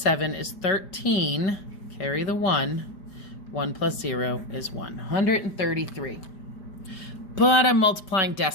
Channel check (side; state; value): right; late; 5.0 ms